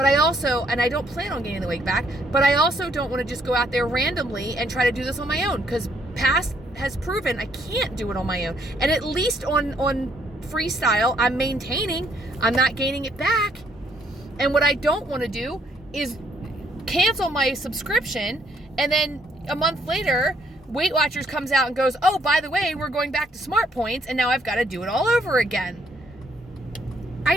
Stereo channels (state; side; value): normal; both; correlation 0.69